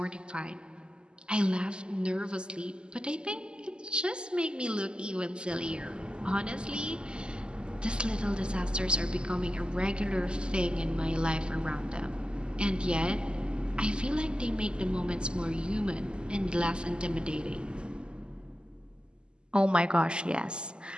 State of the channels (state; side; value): late; left; 0.049 ms